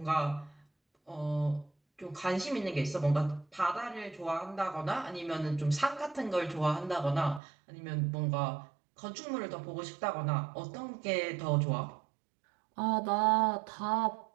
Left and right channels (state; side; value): drops out; left; at 7.4 s